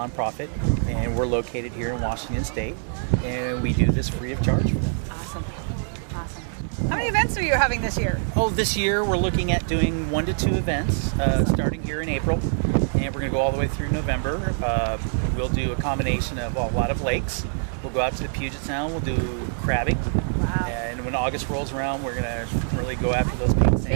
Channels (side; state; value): left; silent; digital silence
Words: and we're located here in Washington State, and we do this free of charge for them. Awesome. How many events are you having this year? Oh, this year we're looking at doing 1 to 2 events, starting here in April, and we're going to go all the way through November. We'll do a combination of a lot of lakes. We'll go out to the Puget Sound, we'll do crabbing. Wow. And when August rolls around, we're going to really go after those